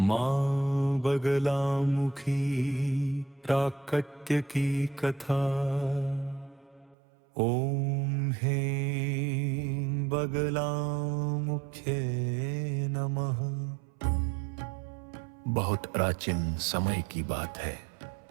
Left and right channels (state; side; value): drops out; left; at 7.0 s